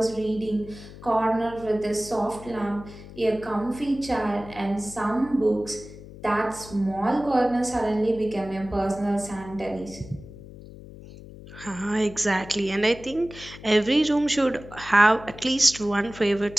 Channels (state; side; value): noise; left; hum, 16 dB below the sound